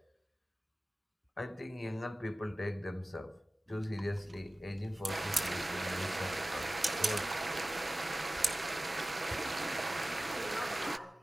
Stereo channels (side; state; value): both; normal; correlation 0.97